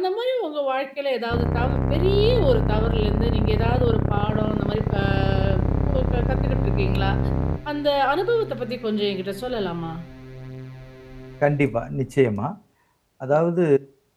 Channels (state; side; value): identical; both; correlation 1.00